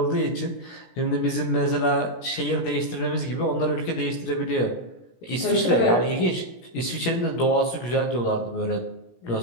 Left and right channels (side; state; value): right; late; 17 ms